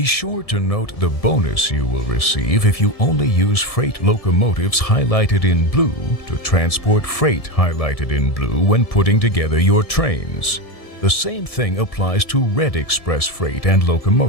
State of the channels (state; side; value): late; right; 1.7 ms